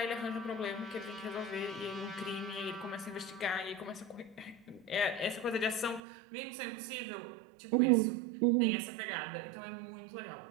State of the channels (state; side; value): drops out; left; at 6.0 s